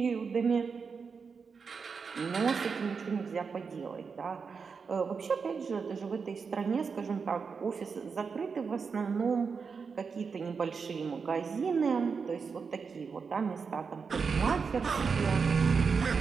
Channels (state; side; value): quieter; left; 5.5 dB